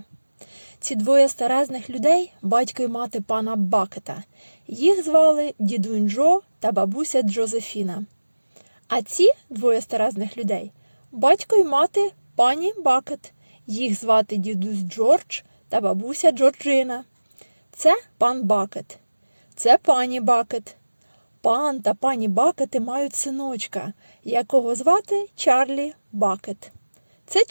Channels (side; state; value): both; inverted; correlation -1.00